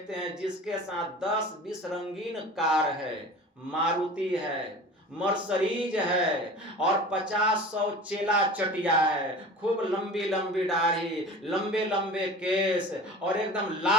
हैं जिसके साथ 10-20 रंगीन कार है, मारुति है, मर्सरीज है, और 50-100 चेला चटिया है, खूब लंबी लंबी दाढ़ी, लंबे लंबे केस, और एकदम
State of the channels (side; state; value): both; normal; correlation 0.38